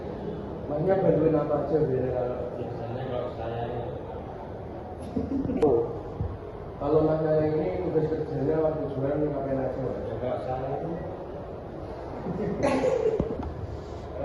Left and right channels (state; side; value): identical; both; correlation 1.00